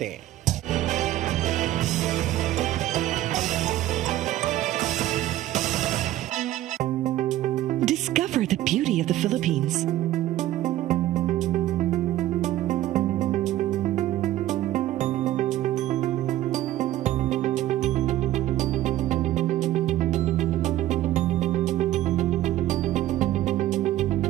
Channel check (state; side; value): quieter; left; 14.2 dB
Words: Discover the beauty of the Philippines.